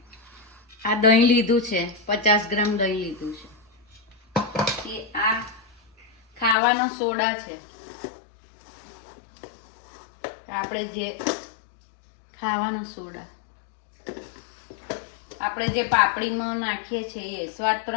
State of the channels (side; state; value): right; drops out; at 6.6 s